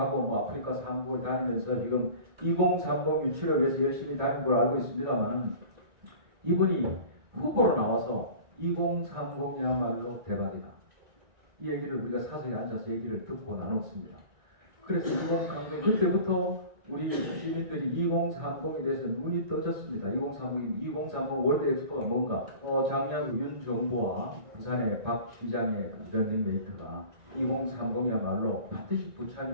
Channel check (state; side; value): late; left; 1.9 ms